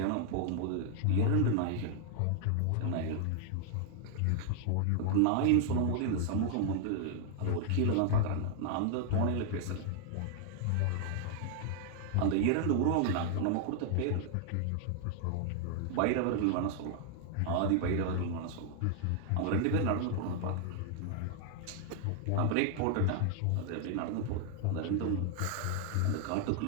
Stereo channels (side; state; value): both; different; correlation 0.00